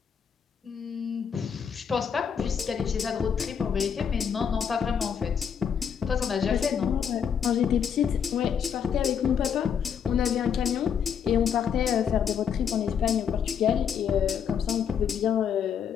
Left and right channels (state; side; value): quieter; right; 7.6 dB